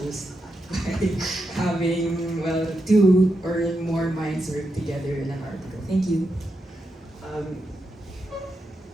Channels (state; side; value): normal; both; correlation 0.86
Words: by having, well, two or more minds work together in an article. Thank you.